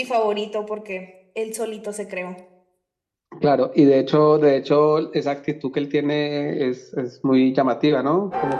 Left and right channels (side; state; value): both; identical; correlation 1.00